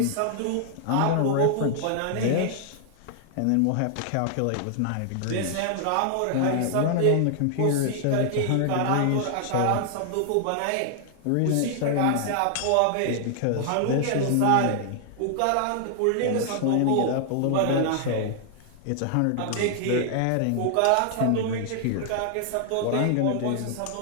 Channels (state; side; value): different; both; correlation 0.00